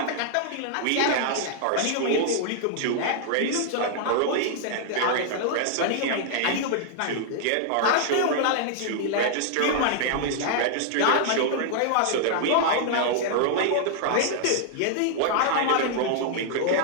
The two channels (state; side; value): different; both; correlation -0.01